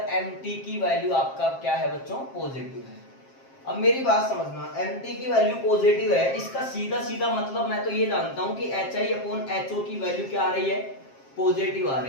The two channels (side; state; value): right; late; 7.5 ms